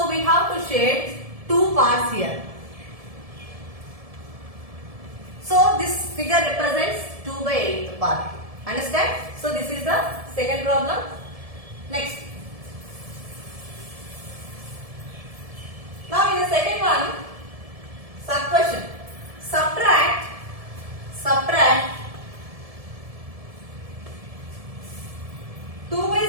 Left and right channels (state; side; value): late; left; 1.7 ms